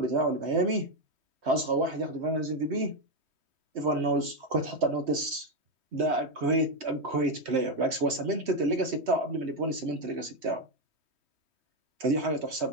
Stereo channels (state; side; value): late; left; 3.2 ms